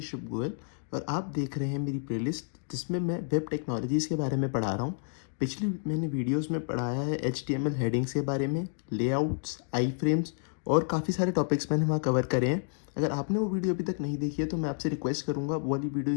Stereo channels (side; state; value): right; silent; 58 dB below the other